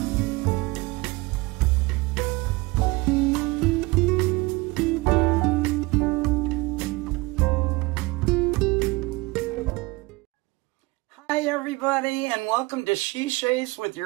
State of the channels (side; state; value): left; quieter; 23.4 dB